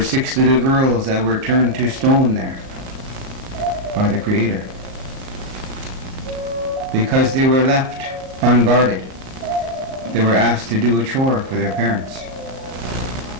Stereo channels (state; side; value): late; left; 38 ms